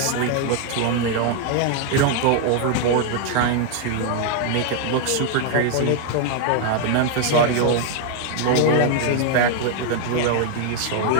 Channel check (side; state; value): both; different; correlation 0.00